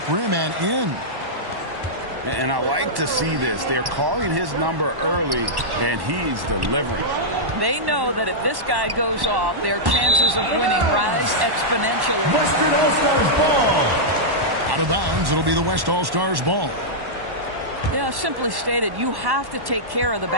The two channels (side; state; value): left; late; 1.1 ms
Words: rim and in. And I like to see this. They're calling his number early, and he's delivering. They know that if this guy goes off, their chances of winning rise exponentially. Western All-Stars ball. Out of bounds, it'll be the West All-Stars ball. Yeah, simply stated, you have to take care of the